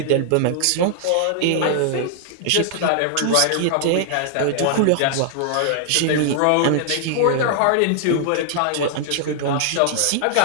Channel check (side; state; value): both; different; correlation -0.01